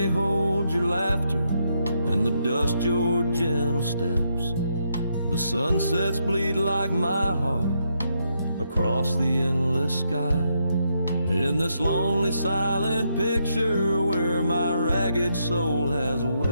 hold your laughter, and the dust your gentle steps. The sunsets bleed like my heart across the endless sky. In this lonely silent picture where my ragged soul has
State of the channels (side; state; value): both; inverted; correlation -0.79